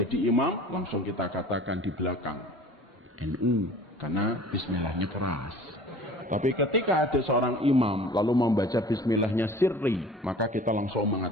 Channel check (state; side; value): normal; both; correlation 0.45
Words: imam, langsung kita katakan di belakang NU karena bismillahnya keras. Tapi ketika ada seorang imam lalu membaca bismillahnya sirri, maka kita langsung